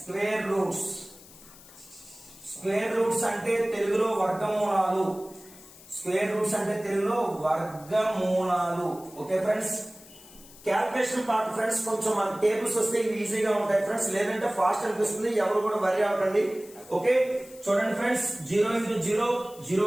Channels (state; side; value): noise; left; hiss, 21 dB below the sound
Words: స్క్వేర్ రూట్స్ అంటే తెలుగులో వర్గమూలాలు. స్క్వేర్ రూట్స్ అంటే తెలుగులో వర్గమూలాలు. Okay friends, calculation part friends కొంచెం మన టేబుల్స్ వస్తే ఇవి ఈజీగా ఉంటాయి ఫ్రెండ్స్, లేదంటే ఫాస్ట్ అనిపిస్తుంది, ఎవరు కూడా వరి అవ్వకండి. ఓకే చూడండి friends, 0 into 0 0